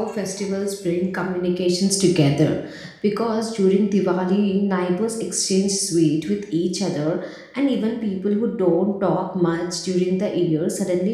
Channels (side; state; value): both; identical; correlation 1.00